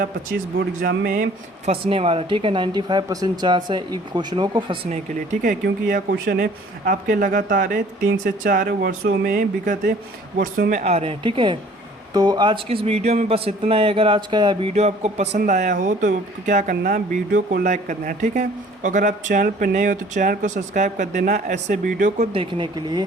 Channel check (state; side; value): normal; both; correlation 0.53